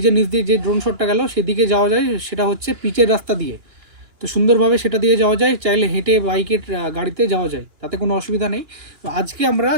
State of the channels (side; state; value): left; late; 2.9 ms